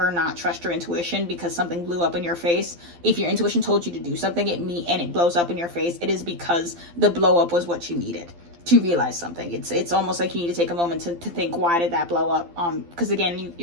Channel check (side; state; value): left; late; 12 ms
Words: not trust your intuition because something blew up in your face. If your intuition told you to do something and it blows up in your face, it is because the blow up was what you needed to realize something. It's almost like you need to take a moment to think, why did that blow up? Because again,